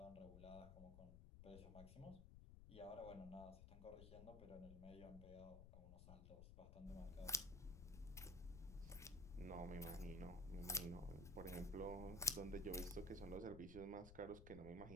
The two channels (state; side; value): noise; left; rumble, 11 dB below the sound